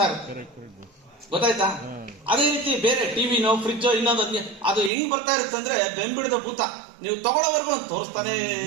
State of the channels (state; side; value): drops out; left; at 4.9 s